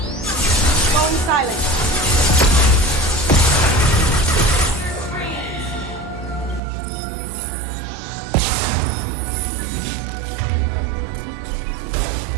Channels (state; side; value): drops out; left; at 6.6 s